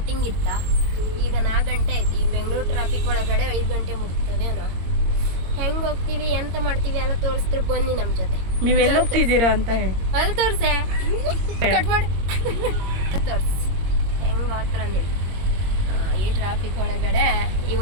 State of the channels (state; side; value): late; left; 22 ms